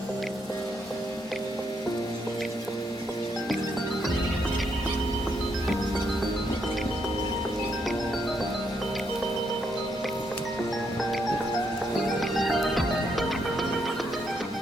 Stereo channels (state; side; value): normal; both; correlation 0.76